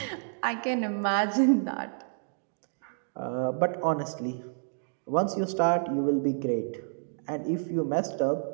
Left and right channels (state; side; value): silent; left; digital silence